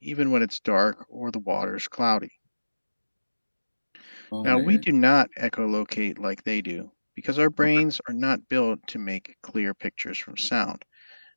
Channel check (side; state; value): both; inverted; correlation -1.00